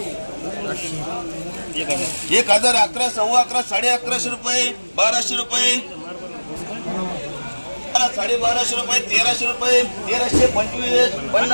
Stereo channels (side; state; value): both; inverted; correlation -1.00